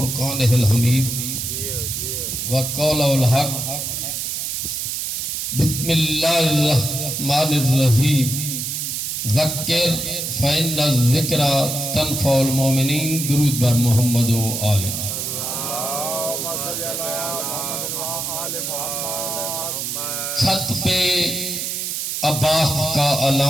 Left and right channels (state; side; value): noise; right; hiss, 3 dB below the sound